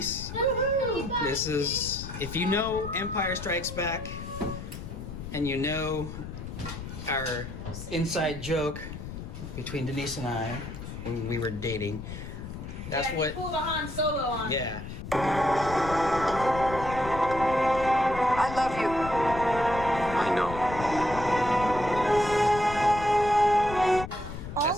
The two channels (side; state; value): left; noise; rumble, 9 dB below the sound